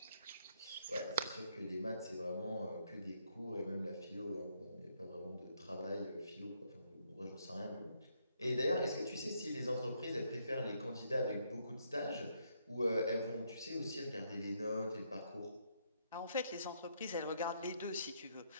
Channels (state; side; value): inverted; both; correlation -0.74